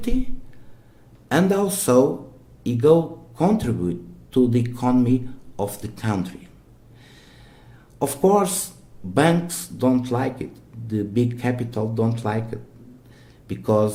and also it go contribute to the economy of the country. Of course, banks don't like it. The big capital don't like it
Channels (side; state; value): both; identical; correlation 1.00